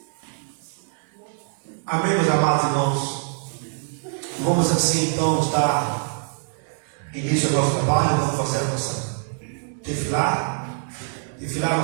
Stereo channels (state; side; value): silent; left; digital silence